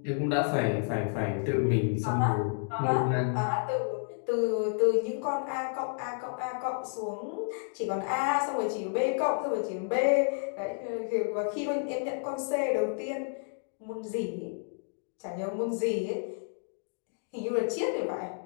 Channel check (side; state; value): right; silent; digital silence